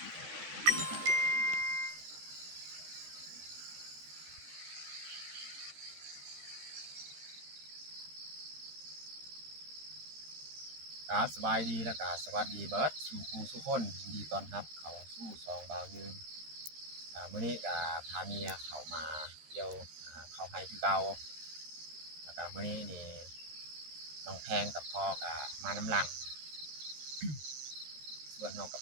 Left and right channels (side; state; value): left; late; 13 ms